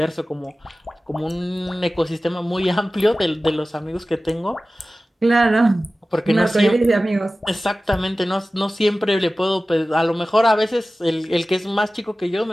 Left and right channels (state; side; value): normal; both; correlation 0.96